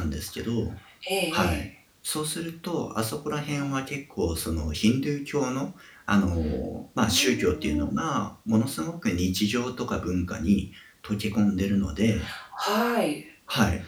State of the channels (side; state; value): both; identical; correlation 1.00